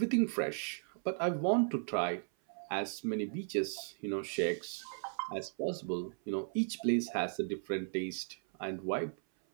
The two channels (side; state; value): left; silent; 54 dB below the other